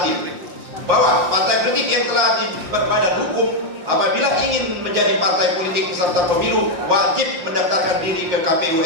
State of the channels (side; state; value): left; late; 5.7 ms